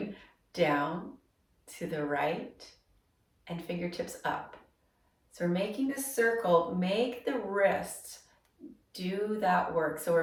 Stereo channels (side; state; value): both; identical; correlation 1.00